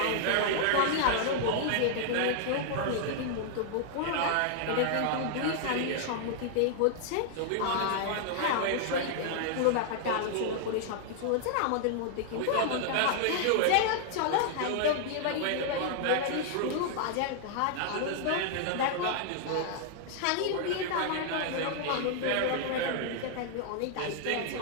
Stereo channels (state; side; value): different; both; correlation -0.01